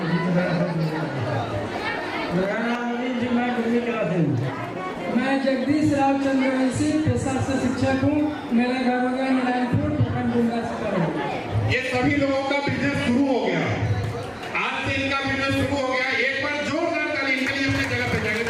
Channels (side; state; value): both; identical; correlation 1.00